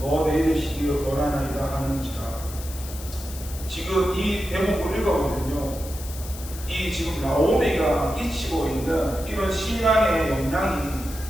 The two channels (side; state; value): left; noise; hiss, 14 dB below the sound